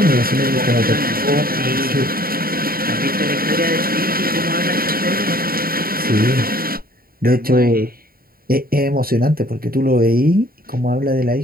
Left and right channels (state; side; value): late; left; 0.43 ms